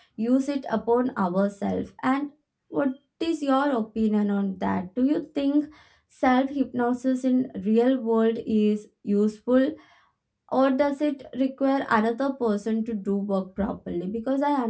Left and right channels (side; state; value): both; identical; correlation 1.00